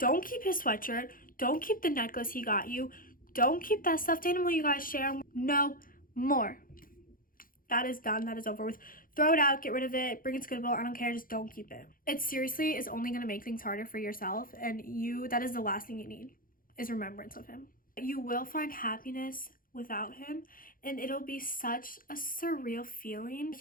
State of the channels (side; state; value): right; late; 0.41 ms